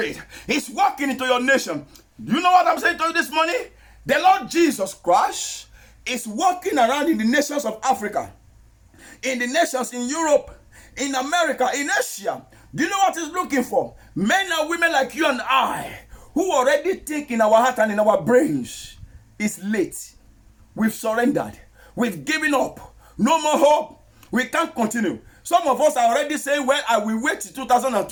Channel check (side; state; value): both; identical; correlation 1.00